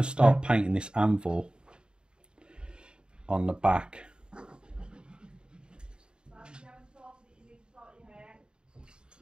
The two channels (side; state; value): left; late; 0.050 ms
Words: to start painting this anvil on the back.